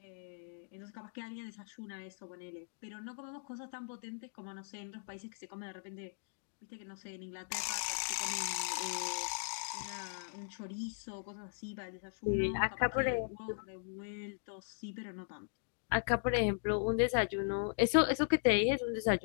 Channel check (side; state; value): right; silent; digital silence